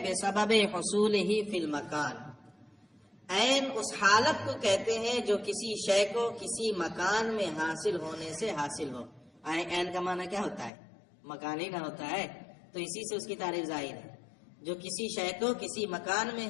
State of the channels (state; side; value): drops out; right; at 10.7 s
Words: بِسَبَبِ حُصُولِهِ فِي الْمَكَانِ. عین اس حالت کو کہتے ہیں جو کسی شے کو کسی مکان میں حاصل ہونے سے حاصل ہو. عین کا معنی کیا ہوتا ہے؟ مکان ہی نہ ہوتا ہے، تو اسی سے اس کی تعریف ظاہر ہے. جو کسی شے کو کسی مکان میں